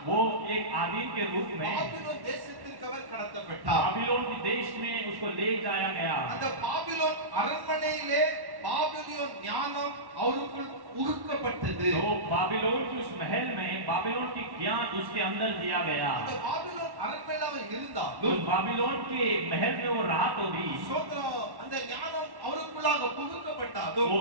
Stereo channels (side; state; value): left; late; 1.1 ms